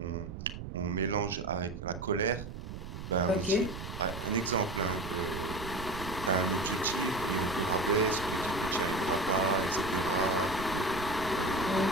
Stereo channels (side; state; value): right; noise; rumble, 9 dB below the sound